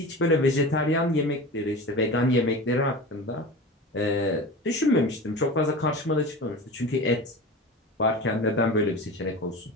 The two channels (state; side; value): normal; both; correlation 0.32